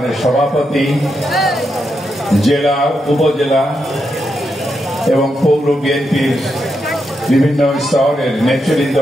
সভাপতি, জেলা, উপজেলা এবং পৌর বিএনপির বিভিন্ন স্তরের নেতৃবৃন্দ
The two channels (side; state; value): both; normal; correlation 0.84